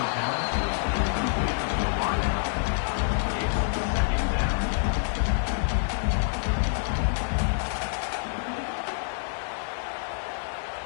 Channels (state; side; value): silent; right; digital silence